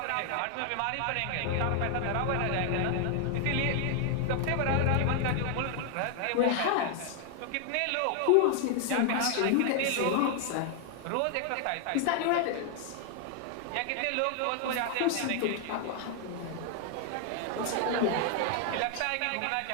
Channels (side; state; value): both; different; correlation 0.00